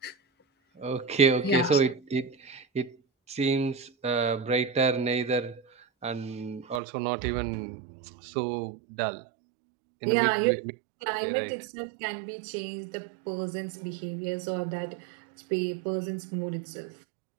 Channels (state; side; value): drops out; left; at 6.8 s